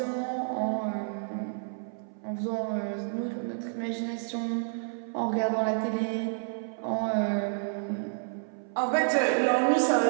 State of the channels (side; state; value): left; silent; 58 dB below the other